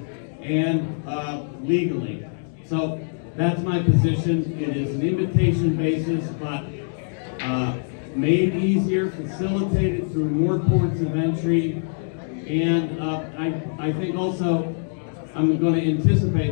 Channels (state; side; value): silent; right; digital silence